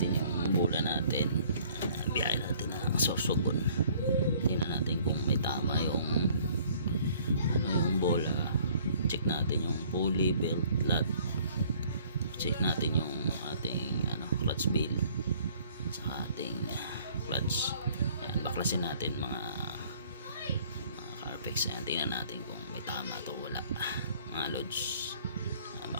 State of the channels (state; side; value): inverted; both; correlation -0.57